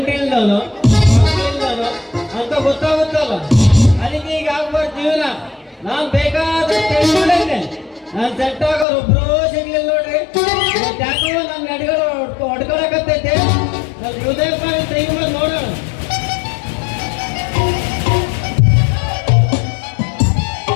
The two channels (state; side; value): drops out; right; at 8.8 s